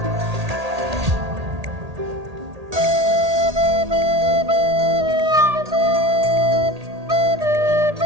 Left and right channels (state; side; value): late; left; 1.8 ms